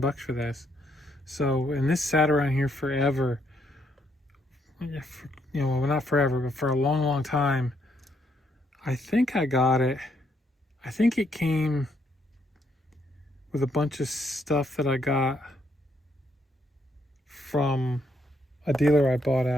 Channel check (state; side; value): normal; both; correlation 0.74